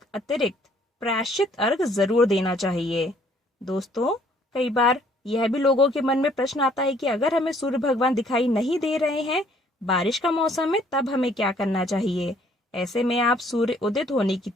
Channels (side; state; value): both; normal; correlation 0.62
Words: अतिरिक्त प्रायश्चित अर्घ्य जरूर देना चाहिए। दोस्तों, कई बार यह भी लोगों के मन में प्रश्न आता है कि अगर हमें सूर्य भगवान दिखाई नहीं दे रहे हैं, बारिश का मौसम है, तब हमें क्या करना चाहिए। ऐसे में आप सूर्य उदित होने की